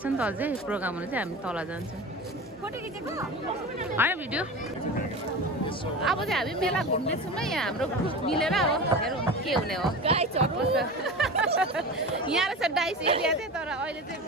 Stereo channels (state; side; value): normal; both; correlation 0.30